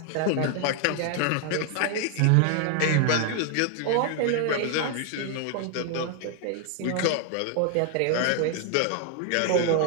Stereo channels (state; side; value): different; both; correlation 0.00